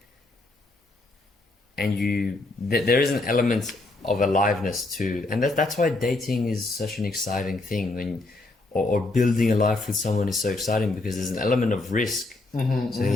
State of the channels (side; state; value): right; quieter; 3.1 dB